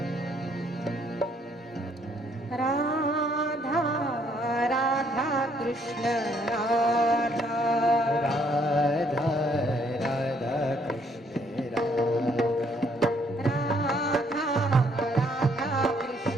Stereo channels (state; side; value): normal; both; correlation 0.67